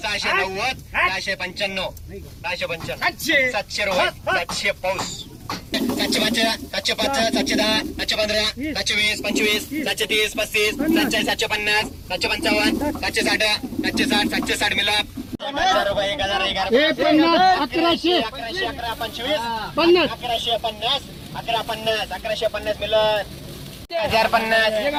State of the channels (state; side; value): identical; both; correlation 1.00